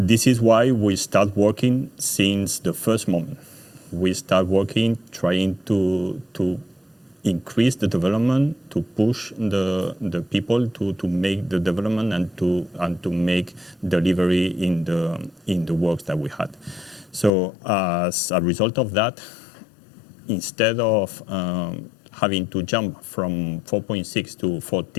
is why we start working since the first moment. We start working, trying to increase the development, to push the people to make the development and to make delivery in the works that we had. So as a result of that, instead of having to jump from 4.6 to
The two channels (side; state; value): right; drops out; at 17.3 s